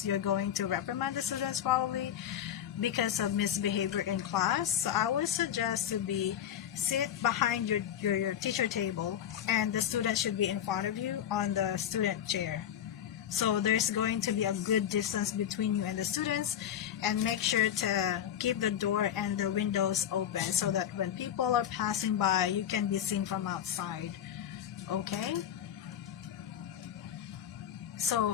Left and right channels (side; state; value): right; quieter; 10.0 dB